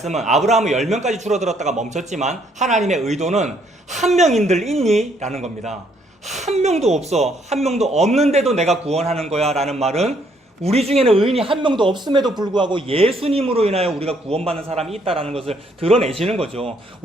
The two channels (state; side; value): normal; both; correlation 0.69